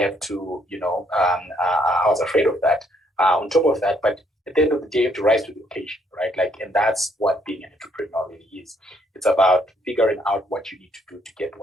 to, I was afraid of that. On top of that, but at the end of the day, you have to rise to the occasion, right? Like, and that's what being an entrepreneur really is. It's about figuring out what you need to do to get to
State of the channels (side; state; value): both; normal; correlation 0.69